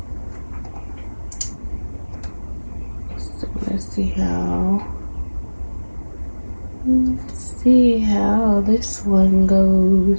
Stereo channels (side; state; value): both; inverted; correlation -1.00